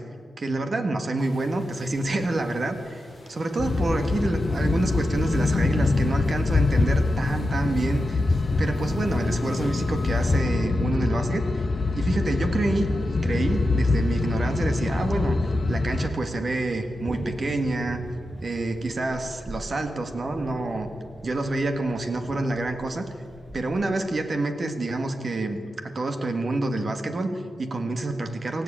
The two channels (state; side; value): normal; both; correlation 0.89